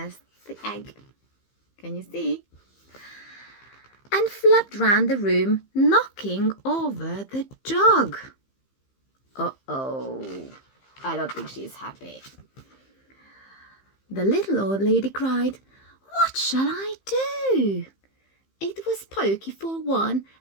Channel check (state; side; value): late; right; 15 ms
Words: the egg. Can you see? And flapped round the room, knocking over the jug. Uh-oh, I don't think she's happy. The little old lady cried, "What shall I do? It was pokey for one,